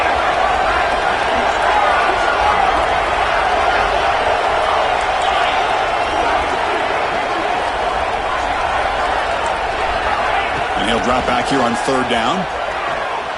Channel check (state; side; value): identical; both; correlation 1.00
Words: Drop back here on 3rd down.